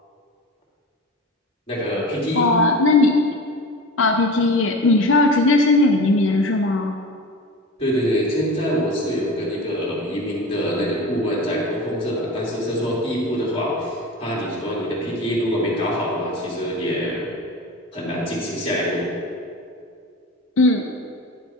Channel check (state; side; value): normal; both; correlation 0.32